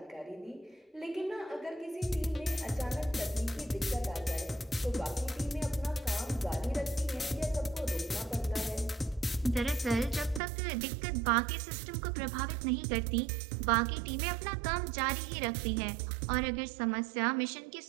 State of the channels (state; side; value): drops out; left; at 10.4 s